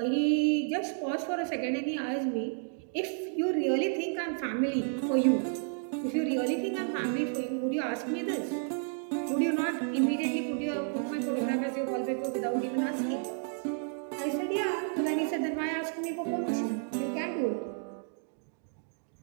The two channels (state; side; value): silent; left; 57 dB below the other